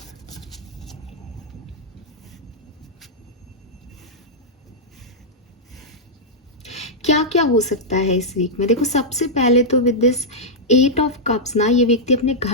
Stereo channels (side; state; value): both; normal; correlation -0.06